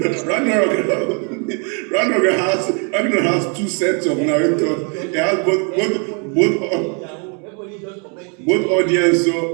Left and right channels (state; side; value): quieter; left; 36.9 dB